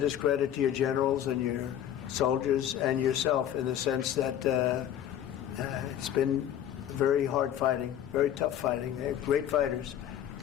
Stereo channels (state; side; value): quieter; right; 10.6 dB